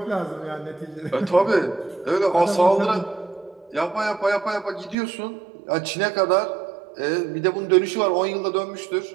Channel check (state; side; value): drops out; left; at 5.0 s